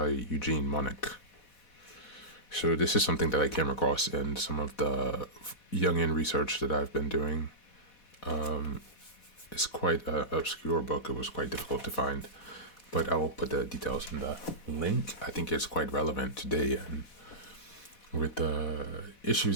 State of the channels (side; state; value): right; late; 4.1 ms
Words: Eugene Monich. So this is something that I came across in some of the Jungian research that I've been doing. It's quite an obscure book. It was quite difficult to find. But I will put the details in the link. I think it's quite relevant today and with the issues